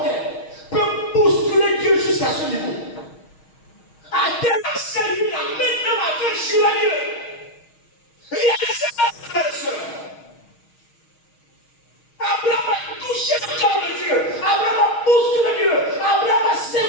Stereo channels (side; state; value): right; late; 6.4 ms